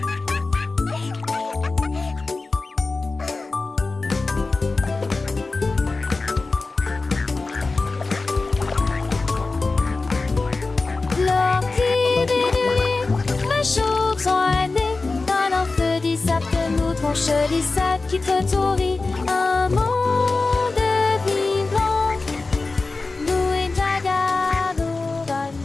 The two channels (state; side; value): quieter; right; 3.7 dB